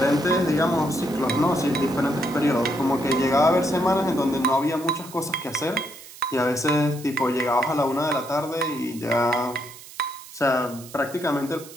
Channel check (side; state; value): right; noise; hiss, 17 dB below the sound